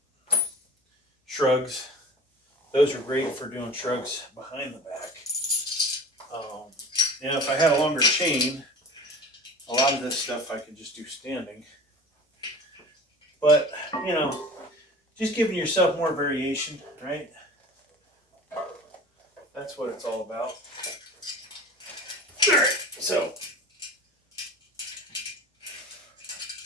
shrugs, those are great for doing shrugs behind the back. And if I had a longer chain, a lot of this stuff I could just do standing. But, just giving yourself more variation, right? That's what it's all about. All right, so,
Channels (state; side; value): normal; both; correlation 0.38